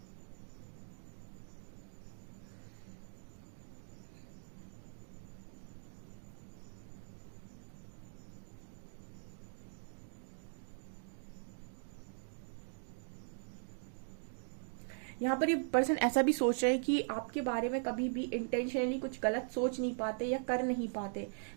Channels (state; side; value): silent; left; digital silence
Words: यहाँ पर ये पर्सन ऐसा भी सोच रहे हैं कि आपके बारे में कभी भी इंटेंशनली कुछ गलत सोच नहीं पाते या कर नहीं पाते,